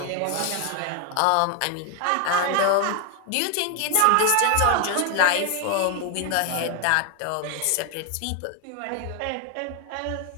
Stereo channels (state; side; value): different; both; correlation 0.01